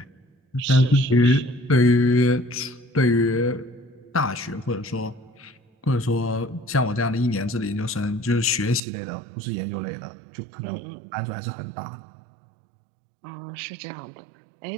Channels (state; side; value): drops out; left; at 8.8 s